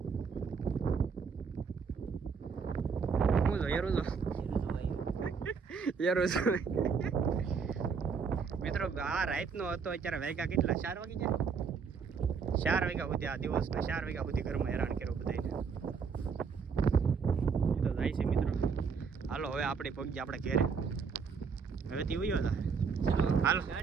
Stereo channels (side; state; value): left; quieter; 5.8 dB